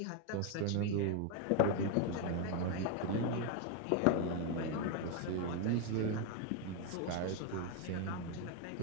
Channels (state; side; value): different; both; correlation 0.01